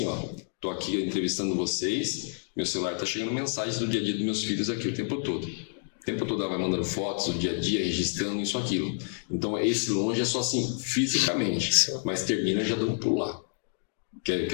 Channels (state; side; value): silent; right; 59 dB below the other